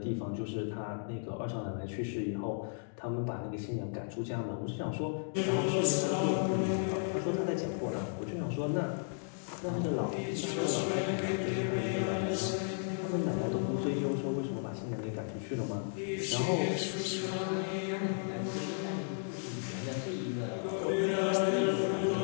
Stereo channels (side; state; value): right; silent; digital silence